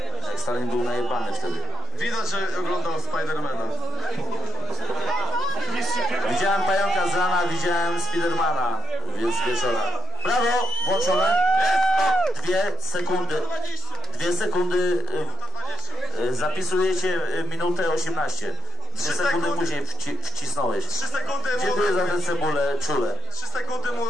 Jak Stalin był najebany wtedy. Widać, że oglądał Spidermana. Widziałem pająka z rana, widziałem Spidermana, więc z wieczora. Brawo, włączone. 2 sekundy, zapisujecie minutę 18. 2 sekundy później wcisnąłeś. 3 sekundy Dziękuję za tę cebulę, czule. 3 sekundy mu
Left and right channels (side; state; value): both; normal; correlation 0.69